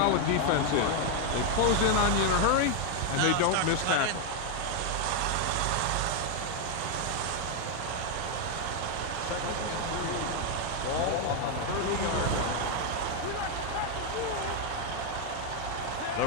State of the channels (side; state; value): both; different; correlation 0.01